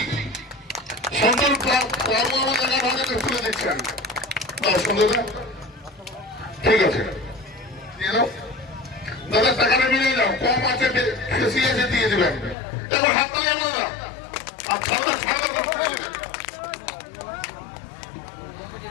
সন্তোষ বাবু আমাদের হাতে তুলে দিচ্ছেন। সুন্দর ঠিক আছে দাদা, টাকাটা মিলে যাও, কম আছে বেশি আছে দিয়ে দেবেন। এবার হাত তালি আমরা আর ছাড়া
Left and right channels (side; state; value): right; drops out; at 12.6 s